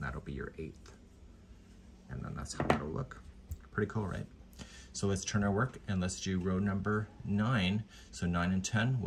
that'll be your 8th. And then that's how it'll look. Pretty cool, right? So let's turn our work and let's do row number 9. So 9 and 10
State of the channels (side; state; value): both; identical; correlation 1.00